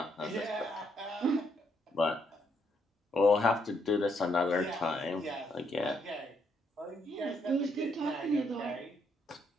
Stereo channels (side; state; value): both; normal; correlation 0.74